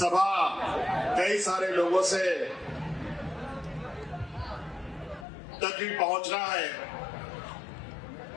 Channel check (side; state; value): right; drops out; at 5.2 s